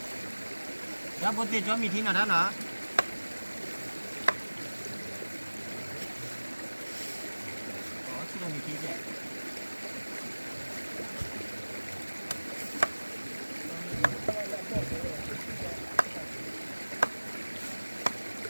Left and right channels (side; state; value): both; inverted; correlation -1.00